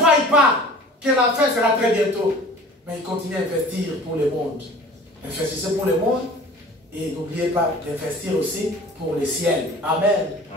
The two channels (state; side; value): normal; both; correlation 0.45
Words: pas que la fin sera très bientôt. Mais ils continuent à investir pour le monde. Investissez pour le monde. Et n'oubliez pas d'investir aussi pour le ciel. Amen.